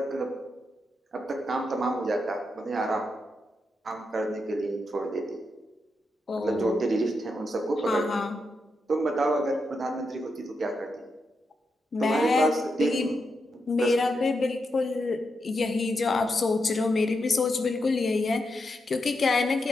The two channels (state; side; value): normal; both; correlation 0.85